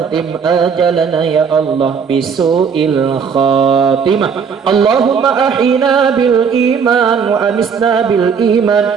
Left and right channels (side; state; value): left; quieter; 6.4 dB